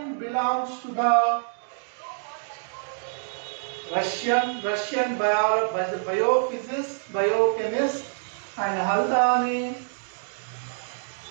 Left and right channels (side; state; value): left; silent; digital silence